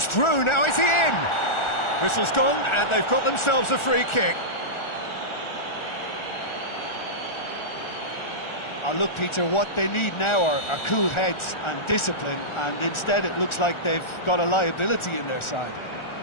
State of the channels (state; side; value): late; right; 1.4 ms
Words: through, now is he in? Whistle's gone, and they've got themselves a free kick. Look, Peter, what they need now are cool heads and discipline, and instead it looks like they've got a liability in their side.